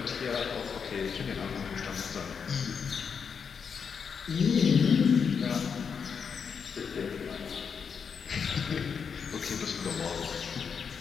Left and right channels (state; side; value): quieter; right; 6.4 dB